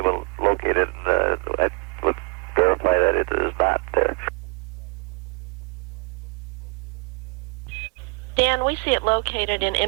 to locate it, and I would verify that it is not there. Dan, we see it located in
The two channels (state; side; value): quieter; left; 31.9 dB